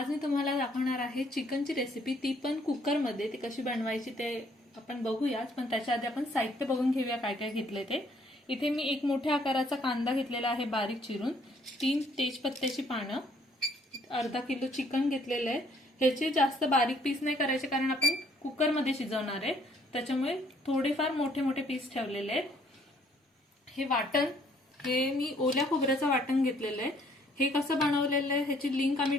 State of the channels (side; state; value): both; normal; correlation 0.64